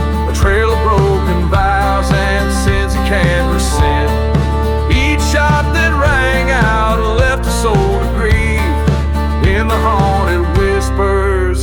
a trail of broken vows and sins he can't rescind. Each shot that rang out left a soul to grieve, in the haunted whispers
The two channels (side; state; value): both; identical; correlation 1.00